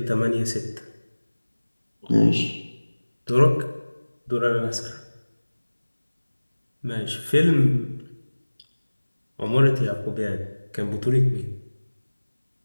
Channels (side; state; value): both; inverted; correlation -1.00